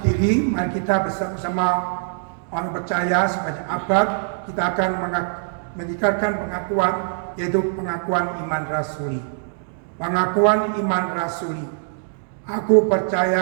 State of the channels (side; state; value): left; silent; digital silence